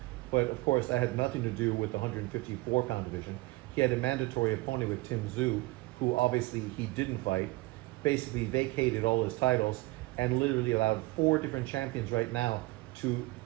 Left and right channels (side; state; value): left; quieter; 21.6 dB